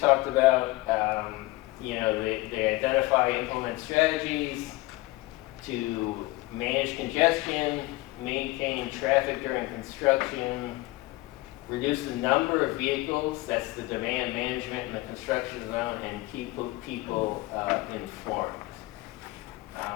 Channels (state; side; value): quieter; right; 20.2 dB